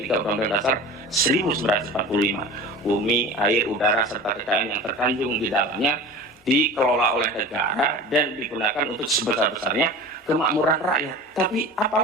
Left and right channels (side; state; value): both; normal; correlation 0.36